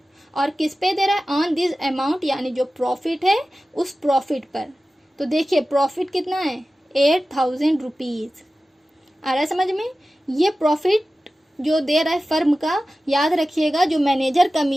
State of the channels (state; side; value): normal; both; correlation 0.95